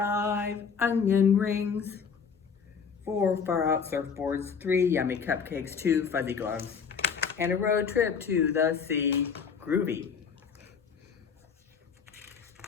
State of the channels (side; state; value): right; quieter; 6.2 dB